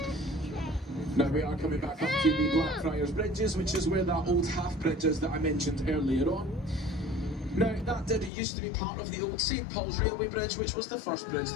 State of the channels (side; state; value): right; drops out; at 8.3 s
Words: Now we are coming back up to the Blackfriars Bridges, which is where that old half bridge is that I mentioned earlier on. Now, that used to be part of the old St Paul's Railway Bridge, which was the first bridge